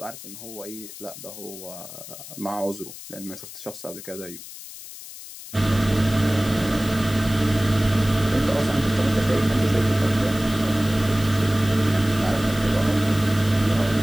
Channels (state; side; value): noise; left; hiss, 14 dB below the sound